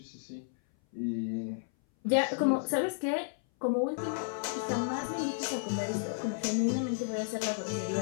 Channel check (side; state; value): right; silent; 56 dB below the other